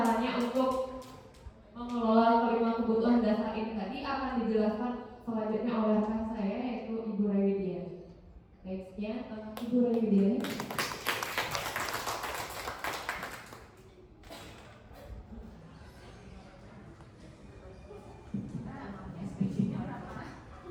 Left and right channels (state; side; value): identical; both; correlation 1.00